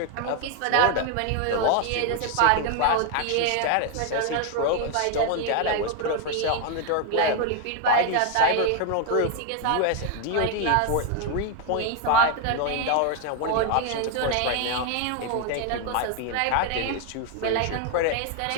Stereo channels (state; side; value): different; both; correlation 0.01